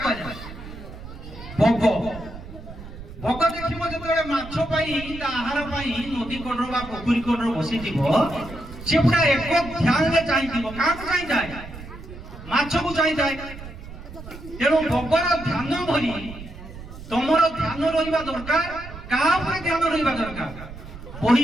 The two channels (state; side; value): noise; right; rumble, 13 dB below the sound